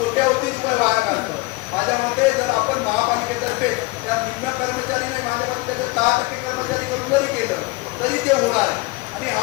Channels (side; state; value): right; quieter; 22.6 dB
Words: रुपये वाया काढतो. माझ्या मते जर आपण महापालिकेतर्फे त्या निम्न कर्मचारी नाही, माझ्या मते त्याचं 10% कर्मचारी करून जरी केलं तरी ते होणार आहे आणि